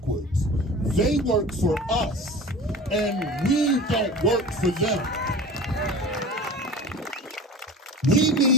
They work for us, and we don't work for them. We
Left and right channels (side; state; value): both; normal; correlation 0.37